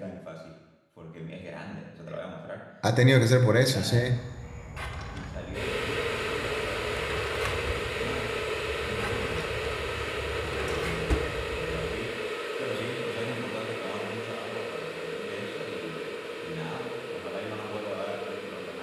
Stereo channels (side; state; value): both; identical; correlation 1.00